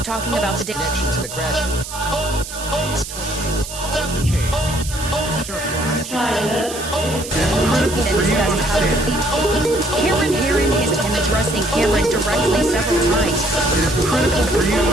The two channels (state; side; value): noise; right; hiss, 10 dB below the sound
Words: talking about the connection to the crash. Cameron Herrin has been addressing Cameron directly several times. It is critical for you to